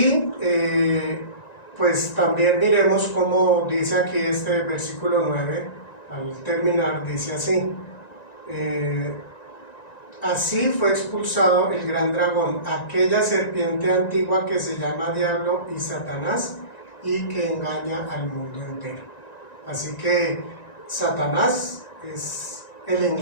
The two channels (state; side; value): late; right; 1.9 ms